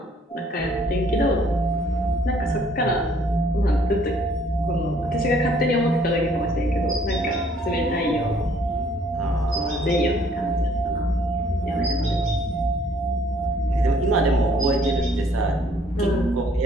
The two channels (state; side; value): normal; both; correlation 0.62